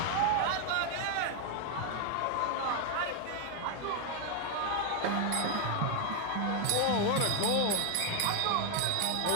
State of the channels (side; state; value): both; different; correlation 0.01